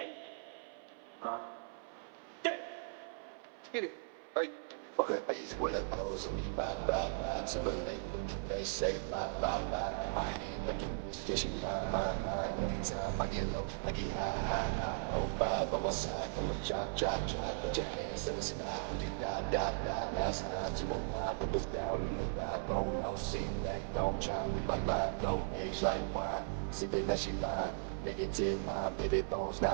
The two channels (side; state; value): left; silent; 53 dB below the other